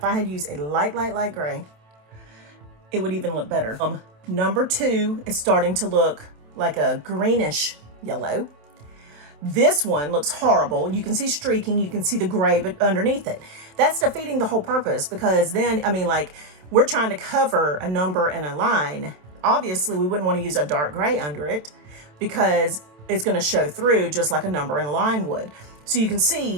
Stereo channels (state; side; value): late; left; 27 ms